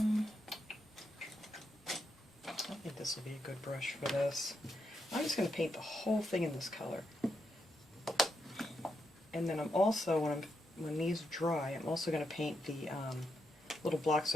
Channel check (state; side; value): normal; both; correlation 0.82